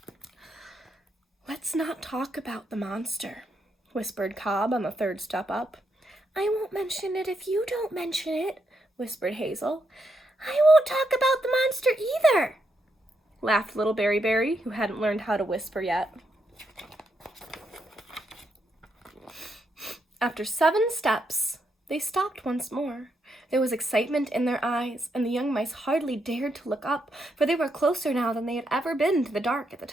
"Let's not talk about the monster," whispered Cobb on the third step up. "I won't mention it if you don't mention it," whispered Hazel. "I won't talk about the monster either," laughed little Berry, who hadn't learned how to whisper yet. After 7 steps, they stopped once more. There was excitement in their eyes, and the young mice hardly dared to look up, for they were closer now than they had ever been to the dark at the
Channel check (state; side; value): normal; both; correlation 0.80